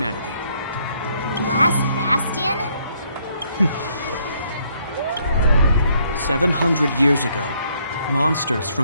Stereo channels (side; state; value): both; inverted; correlation -0.69